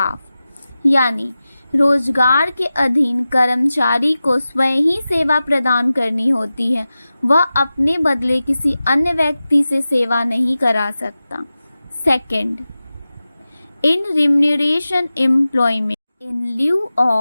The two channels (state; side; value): inverted; both; correlation -0.95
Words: यानी रोजगार के अधीन कर्मचारी को स्वयं ही सेवा प्रदान करनी होती है, वह अपने बदले किसी अन्य व्यक्ति से सेवा नहीं करा सकता। Second, in remuneration employment, in lieu